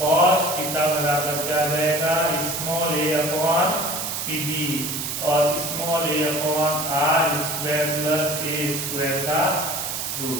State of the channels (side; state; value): right; noise; hiss, 4 dB below the sound